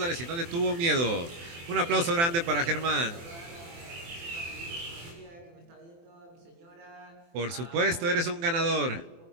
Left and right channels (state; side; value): late; left; 24 ms